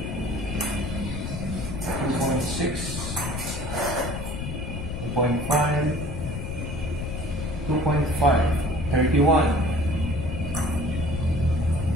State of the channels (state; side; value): noise; left; rumble, 5 dB below the sound